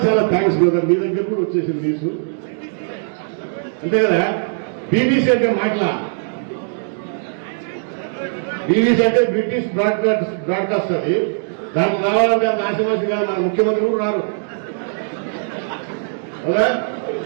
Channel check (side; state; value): left; silent; digital silence